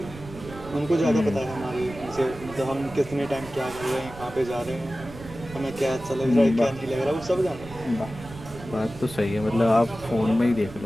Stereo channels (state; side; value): noise; right; rumble, 16 dB below the sound